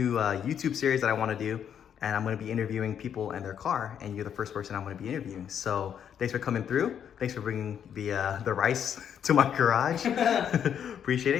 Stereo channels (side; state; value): right; quieter; 8.6 dB